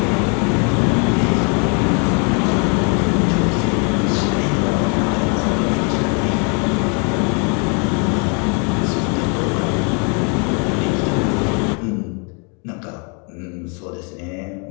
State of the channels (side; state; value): right; quieter; 36.1 dB